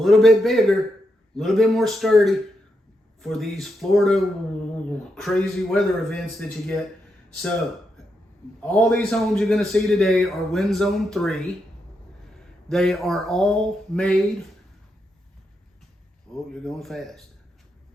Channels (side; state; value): both; normal; correlation 0.83